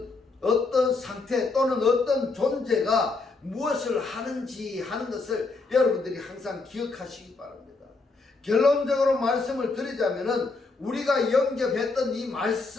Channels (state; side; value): quieter; right; 3.8 dB